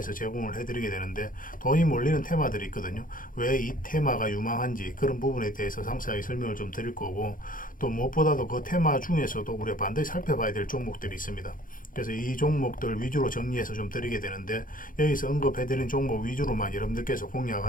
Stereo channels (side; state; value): right; late; 0.40 ms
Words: 제공을 해드리게 되는데, 돈이 몰리는 테마들이 있거든요. 왜 이 테마가 유망한지 그런 부분에 대해서 상세하게 설명을 좀 드릴 거고, 또 무엇보다도 그 테마 중에서도 우리가 반드시 살펴봐야 될 종목들이 있습니다. 그래서 이 종목들 위주로 정리해서 좀 드리게 되는데, 여기서 언급해드린 종목 위주로만 여러분들께서